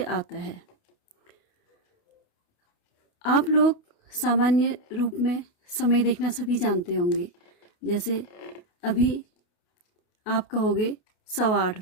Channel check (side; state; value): right; late; 28 ms